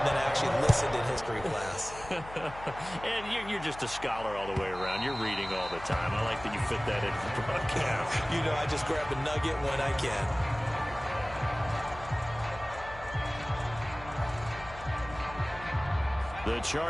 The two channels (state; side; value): noise; left; hum, 15 dB below the sound